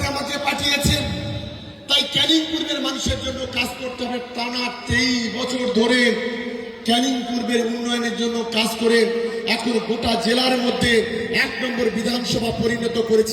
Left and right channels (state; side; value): identical; both; correlation 1.00